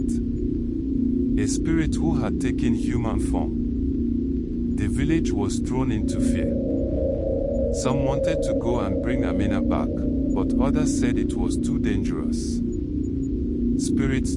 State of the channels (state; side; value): identical; both; correlation 1.00